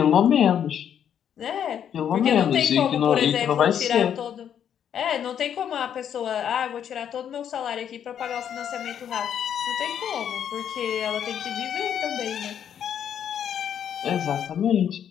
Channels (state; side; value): quieter; right; 9.0 dB